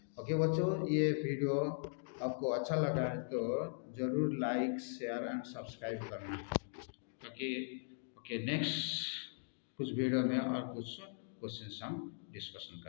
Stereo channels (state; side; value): silent; right; digital silence